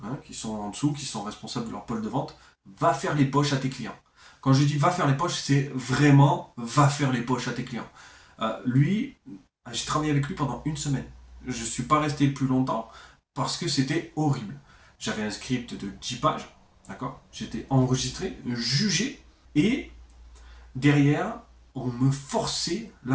qui sont en dessous, qui sont responsables de leur pôle de vente, va faire les poches à tes clients. Quand je dis va faire les poches, c'est vraiment va faire les poches à tes clients. Lui, j'ai travaillé avec lui pendant une semaine. Je suis pas resté plus longtemps parce que c'était horrible. J'avais un script de 10 pages, d'accord? J'étais enregistré, jugé, et derrière, on me forçait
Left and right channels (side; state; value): both; identical; correlation 1.00